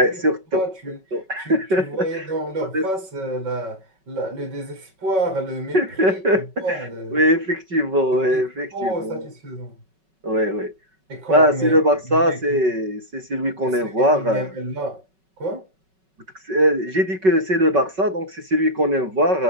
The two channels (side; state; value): left; late; 5.3 ms